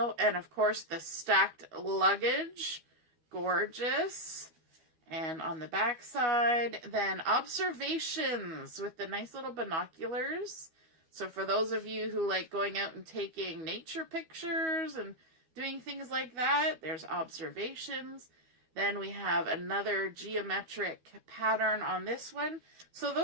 And of course, the stacked luggage. Gorgeous. And on the back side, then observations with the nice little binoculars. So for those of you who like going out and taking nature pictures and doing things like that, there's observations. Then we have another geometric pattern on this one. So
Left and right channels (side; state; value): left; late; 12 ms